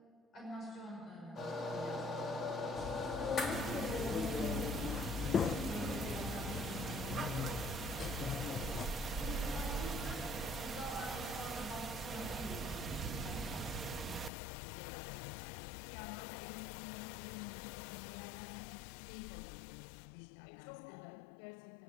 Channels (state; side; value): drops out; right; at 14.3 s